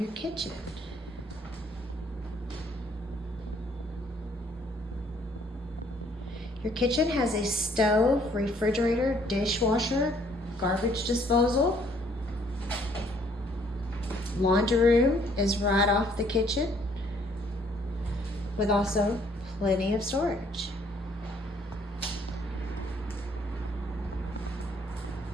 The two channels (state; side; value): normal; both; correlation 0.63